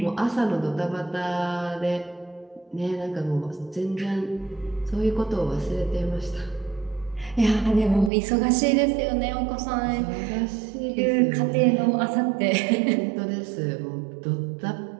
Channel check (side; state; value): left; drops out; at 8.1 s